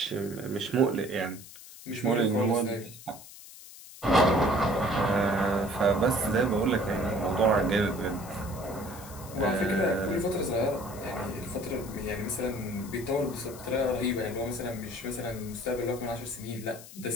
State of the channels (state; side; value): noise; left; hiss, 17 dB below the sound